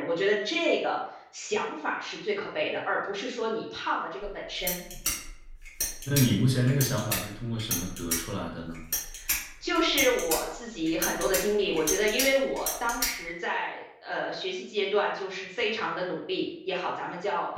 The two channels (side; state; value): both; identical; correlation 1.00